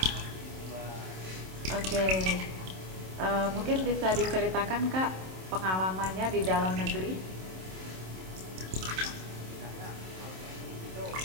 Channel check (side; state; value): left; late; 27 ms